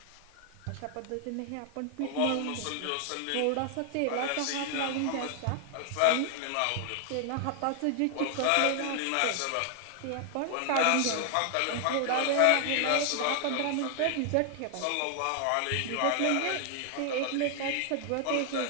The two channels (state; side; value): different; both; correlation 0.00